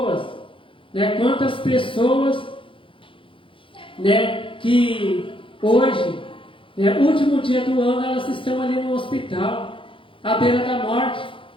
que hoje, último dia do ano, elas estão ali no hospital, à beira da morte.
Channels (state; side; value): late; right; 0.25 ms